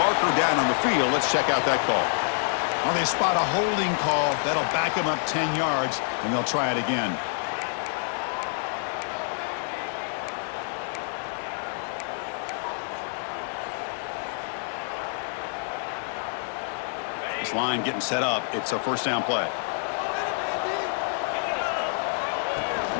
down on the field. Let's check out that call. Well, they spot a holding call. That'll back them up 10 yards, and they'll try it again. This line getting set up. It's a first down play.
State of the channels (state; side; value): silent; right; 60 dB below the other